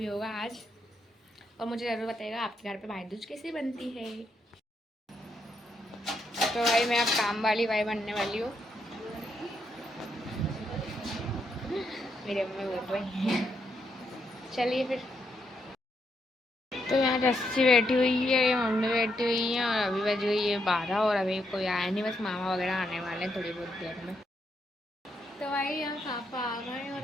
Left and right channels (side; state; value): both; normal; correlation 0.79